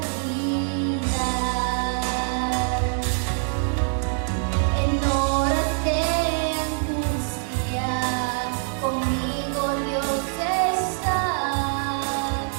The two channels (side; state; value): left; silent; 56 dB below the other